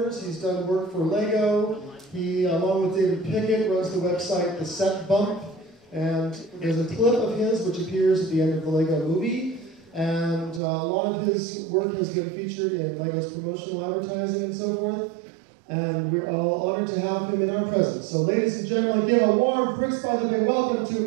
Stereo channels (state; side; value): drops out; left; at 10.6 s